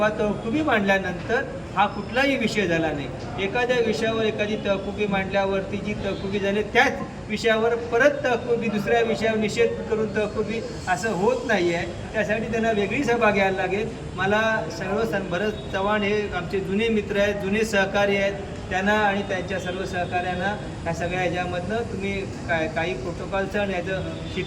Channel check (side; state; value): both; identical; correlation 1.00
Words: तहकुबी मांडल्यानंतर हा कुठलाही विषय झाला नाही. एखाद्या विषयावर एखादी तहकुबी मांडल्यावरती जी तहकुबी झाली त्याच विषयावर परत तहकुबी दुसऱ्या विषयावर निषेध करून तहकुबी असं होत नाही आहे. त्यासाठी त्यांना वेगळी सभा घ्यायला लागेल. मला भरत चव्हाण हे आमचे जुने मित्र आहेत, जुने सहकारी आहेत. त्यांना आणि त्यांच्या सर्व सहकाऱ्यांना ह्या सगळ्या ह्याच्यामधनं तुम्ही काही प्रोटोकॉलचं आणि